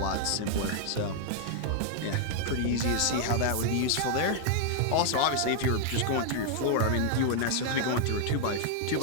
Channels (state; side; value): different; both; correlation 0.00